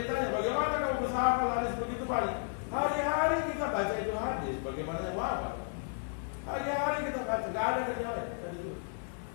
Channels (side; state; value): right; silent; 56 dB below the other